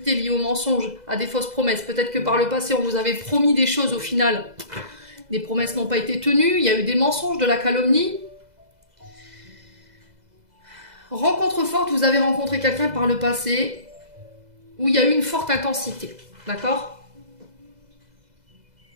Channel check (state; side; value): late; left; 2.0 ms